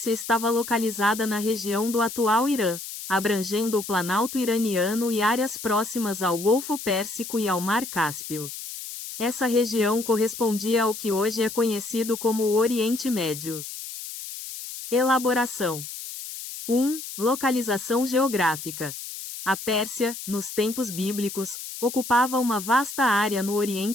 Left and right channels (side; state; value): left; noise; hiss, 10 dB below the sound